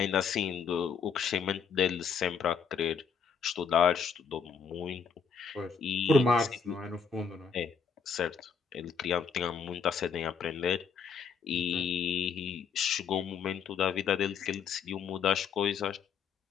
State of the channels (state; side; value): quieter; right; 6.2 dB